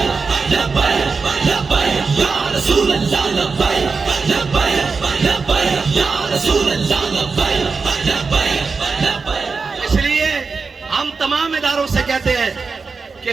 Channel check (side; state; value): left; quieter; 4.7 dB